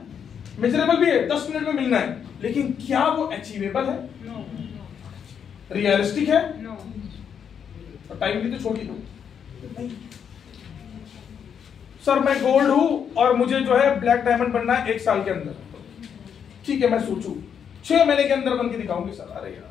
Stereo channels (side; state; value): right; quieter; 7.7 dB